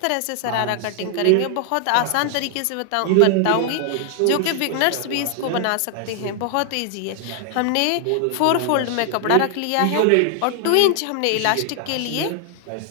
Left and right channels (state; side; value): different; both; correlation 0.00